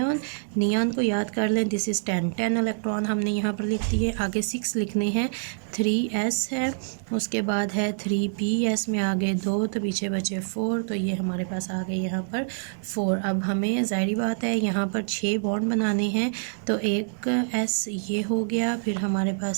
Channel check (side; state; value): left; silent; digital silence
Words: को याद कर लें, दिस इज़ 10 इलेक्ट्रॉन हमने यहाँ पर लिख दिए। आगे 6 लिखने हैं, 3s है, उसके बाद है 3ps में आगे 2, तो पीछे बचे 4, तो ये हमारे पास आ गए यहाँ पर 4। अब हमें ज़ाहिर बात है यहाँ पर 6 बॉन्ड बनाने हैं, तो एक s ये हो गया, फिर हमारे